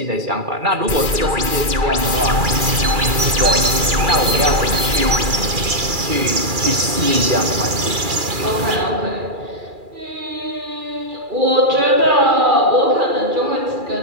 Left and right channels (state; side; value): late; left; 2.4 ms